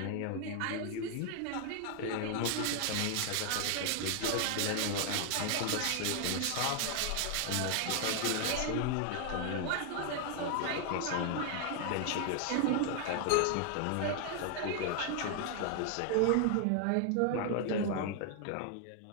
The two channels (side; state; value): both; different; correlation 0.00